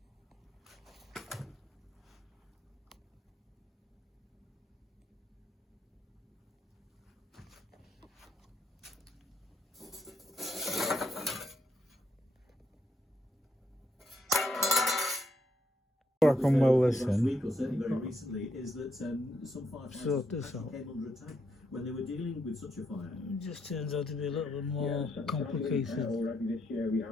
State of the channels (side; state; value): both; normal; correlation 0.76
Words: I can well listen. Week or certainly very recently is that some Sort this out. came under attack when they were dealing with such a fire. It just turns out to be a little bit more complicated Already this year we